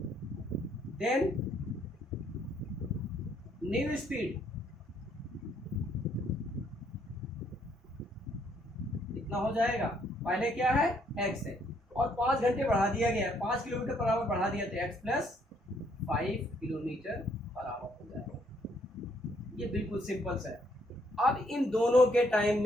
than new speed, इतना हो जाएगा। पहले क्या है, x है और 5 घंटे बढ़ा दिया गया है, 5 किलोमीटर पर आवर बढ़ा दिया तो x plus 5 kilometre per our हो जाएगा। ये बिल्कुल सिंपल सा है। अब इन दोनों के टाइम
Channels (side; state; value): both; normal; correlation 0.69